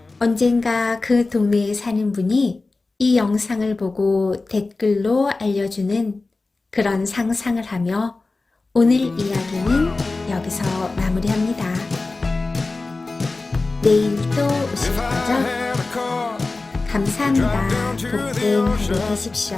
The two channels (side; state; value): right; quieter; 3.5 dB